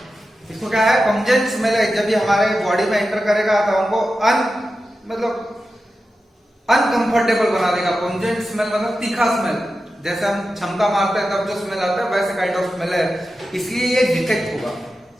इसको क्या है, पंजेंट स्मेल है। जब ये हमारे बॉडी में एंटर करेगा तो हमको मतलब अनकंफर्टेबल बना देगा। पंजेंट स्मेल मतलब तीखा स्मेल, जैसे हम क्षमता मारते हैं तब जो स्मेल आता है वैसे काइंड ऑफ स्मेल है, इसलिए ये डिटेक्ट होगा।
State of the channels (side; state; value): both; normal; correlation 0.92